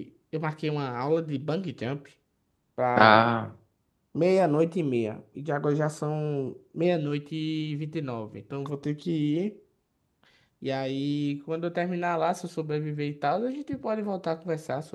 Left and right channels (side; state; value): both; identical; correlation 1.00